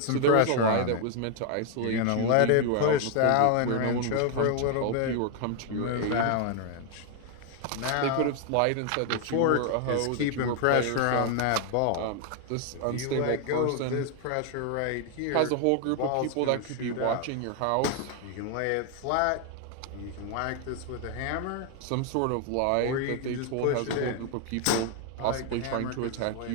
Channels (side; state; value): both; different; correlation 0.00